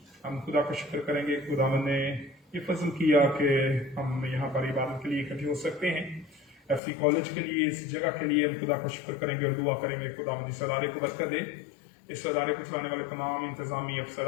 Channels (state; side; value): drops out; right; at 6.8 s